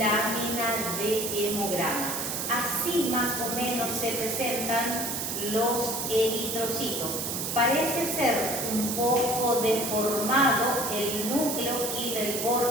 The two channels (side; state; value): right; noise; hiss, 3 dB below the sound